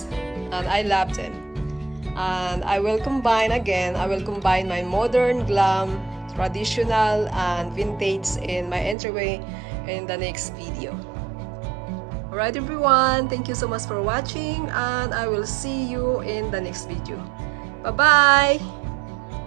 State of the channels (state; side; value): drops out; left; at 9.0 s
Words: and I love them. And I will combine my modern, glam, traditional, and vintage in my entryway in the next video. Alright everyone, thank you so much for watching, and I will see you in the next video. Bye bye!